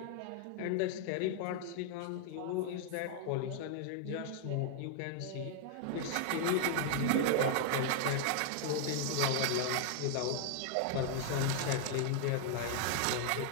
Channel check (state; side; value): different; both; correlation 0.00